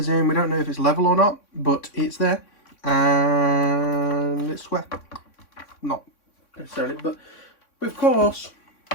in we don't know if it's level or not, but it's there. And it's wet, not necessarily, but of course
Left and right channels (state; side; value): late; right; 3.6 ms